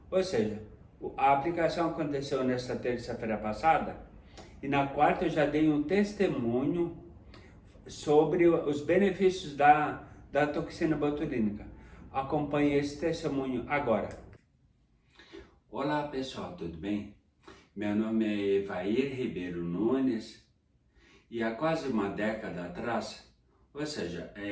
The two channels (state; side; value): identical; both; correlation 1.00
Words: Ou seja, a aplicação aconteceu nesta terça-feira passada e na quarta eu já dei um testemunho sobre os benefícios da toxina botulínica. Acompanhe esse testemunho agora. Olá pessoal, tudo bem? Meu nome é Evair Ribeiro Nunes e há quase uma década atrás, ou seja,